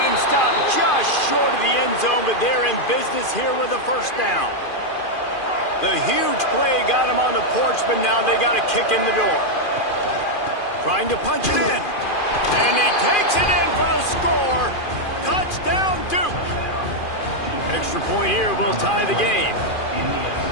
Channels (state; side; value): late; right; 2.4 ms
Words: him stopped just short of the end zone, but they're in business here with a first down. The huge play got him on the porch, but now they got a kick in the door. Trying to punch it in. And he takes it in for the score. Touchdown, Duke. Extra point here will tie the game.